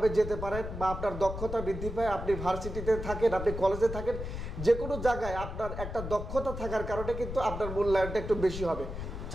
যেতে পারেন, বা আপনার দক্ষতা বৃদ্ধি পায়। আপনি ভার্সিটিতে থাকেন, আপনি কলেজে থাকেন, যে কোনো জায়গায় আপনার একটা দক্ষতা থাকার কারণে কিন্তু আপনার মূল্যায়নটা একটু বেশি হবে।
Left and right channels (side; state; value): left; noise; rumble, 7 dB below the sound